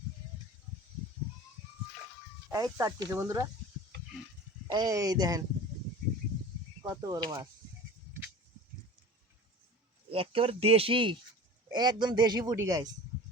এই চাটতেছে বন্ধুরা, এই দেখেন কত বড় মাছ, একেবারে দেশি, একদম দেশি পুটি গাইস।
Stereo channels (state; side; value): normal; both; correlation 0.37